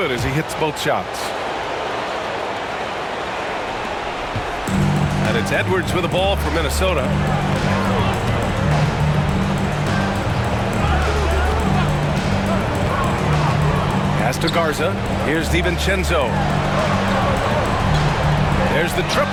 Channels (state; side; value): identical; both; correlation 1.00